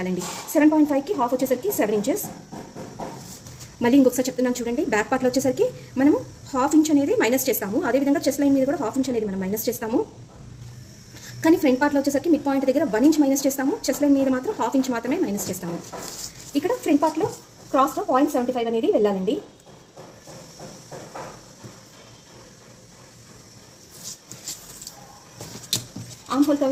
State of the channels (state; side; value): identical; both; correlation 1.00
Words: 7.5కి ½ వచ్చేసరికి 7 ఇంచెస్. మళ్ళీ ఇంకొకసారి చెప్తున్నాను చూడండి. బ్యాక్ పార్ట్లో వచ్చేసరికి మనము ½ ఇంచ్ అనేది మైనస్ చేస్తాము, అదేవిధంగా చెస్ట్ లైన్ మీద కూడా ½ ఇంచ్ అనేది మనం మైనస్ చేస్తాము. కానీ ఫ్రంట్ పార్ట్లో వచ్చేసరికి మిడ్ పాయింట్ దగ్గర 1 ఇంచ్ మైనస్ చేస్తాము, చెస్ట్ లైన్ మీద మాత్రం ½ ఇంచ్ మాత్రమే మైనస్ చేస్తాము. ఇక్కడ ఫ్రంట్ పార్ట్లో క్రాస్లో 0.75 అనేది వెళ్ళాలండి. ఆర్మ్ హోల్